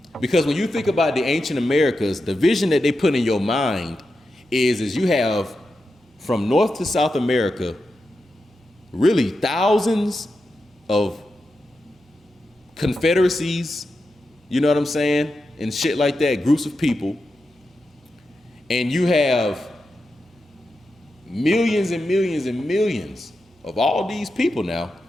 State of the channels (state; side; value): normal; both; correlation 0.89